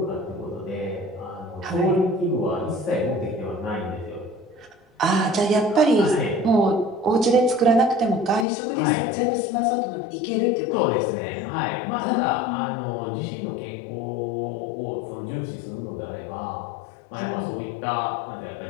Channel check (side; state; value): right; drops out; at 8.5 s